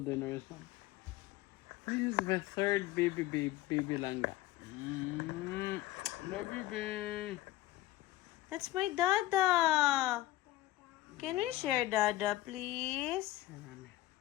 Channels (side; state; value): right; quieter; 16.0 dB